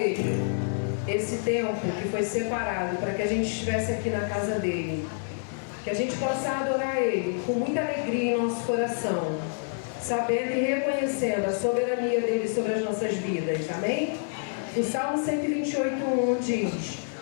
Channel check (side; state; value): right; silent; 60 dB below the other